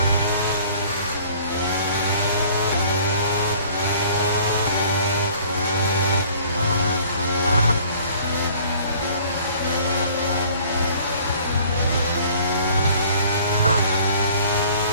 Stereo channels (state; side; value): inverted; both; correlation -0.52